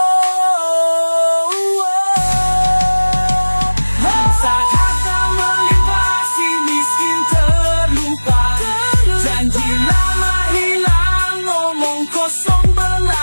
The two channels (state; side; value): inverted; both; correlation -1.00